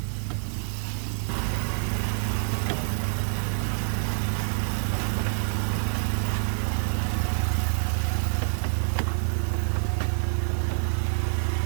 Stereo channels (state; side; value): silent; left; digital silence